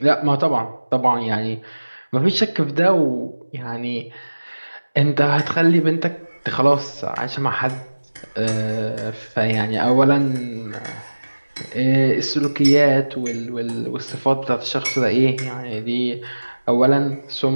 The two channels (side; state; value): both; inverted; correlation -1.00